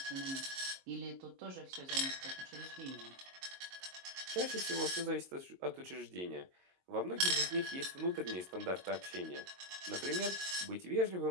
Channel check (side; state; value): left; late; 22 ms